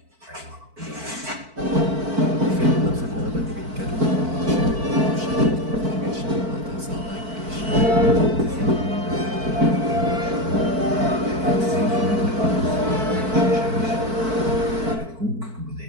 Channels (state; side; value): late; left; 4.5 ms